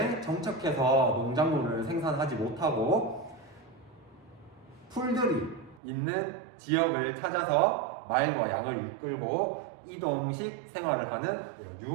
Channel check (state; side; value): drops out; left; at 5.8 s